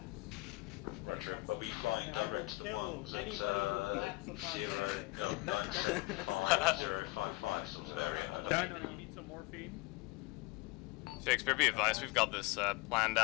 Roger, are we flying direct to the ones at 0975055 sort of area, over? No, you need some morphine. Shakespeare, be advised, we've got this planned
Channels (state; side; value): quieter; right; 23.0 dB